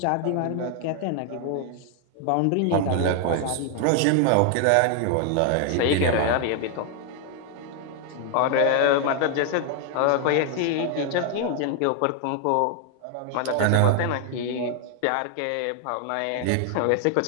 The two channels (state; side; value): different; both; correlation 0.00